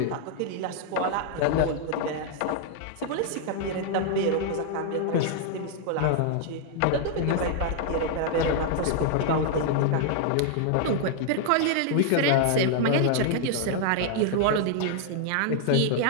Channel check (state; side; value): different; both; correlation 0.00